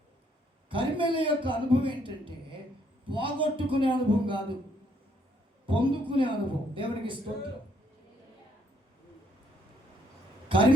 కర్మెల యొక్క అనుభవం ఏంటంటే పోగొట్టుకునే అనుభవం కాదు, పొందుకునే అనుభవం. దేవునికి స్తోత్రం.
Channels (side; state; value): both; normal; correlation 0.69